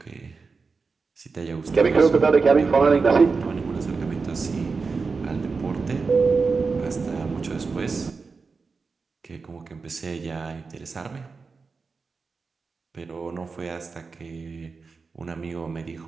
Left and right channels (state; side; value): quieter; left; 4.6 dB